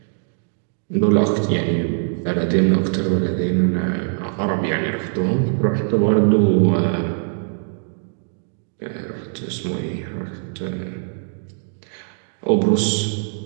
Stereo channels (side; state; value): left; silent; 65 dB below the other